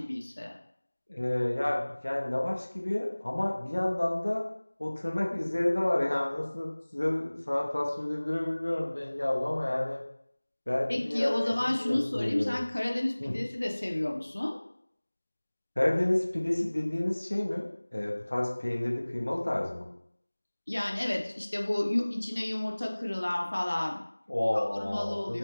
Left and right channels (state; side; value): inverted; both; correlation -1.00